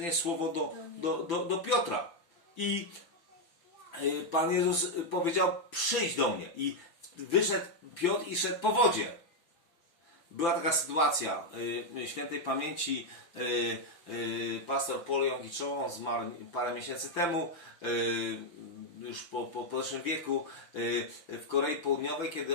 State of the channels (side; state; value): right; late; 5.9 ms